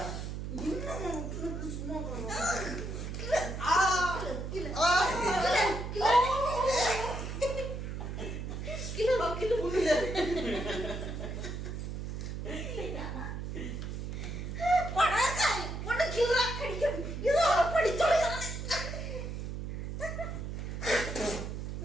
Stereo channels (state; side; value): noise; right; hum, 5 dB below the sound